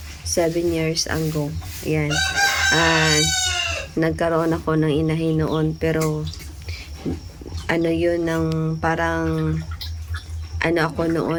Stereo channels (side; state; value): both; identical; correlation 1.00